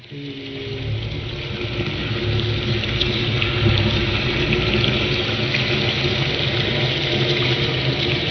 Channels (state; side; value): identical; both; correlation 1.00